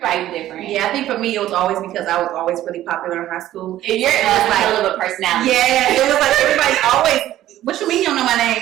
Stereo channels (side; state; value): left; quieter; 13.5 dB